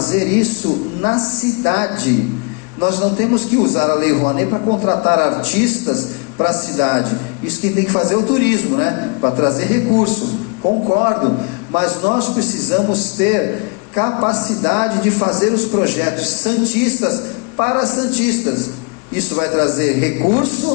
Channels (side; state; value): right; quieter; 34.5 dB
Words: isso na cidade. Nós não temos que usar a Lei Rouanet para contratar artistas para a cidade. Isso quem tem que fazer é o turismo, né? Para trazer recurso, concordo, mas nós precisamos ter capacidade de fazer os projetos santistas para santistas. Isso vai trazer